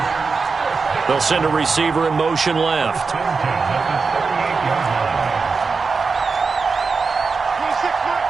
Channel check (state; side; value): quieter; left; 4.7 dB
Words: They'll send a receiver in motion left.